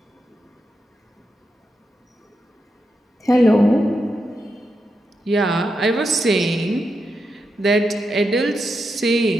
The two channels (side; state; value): both; normal; correlation 0.86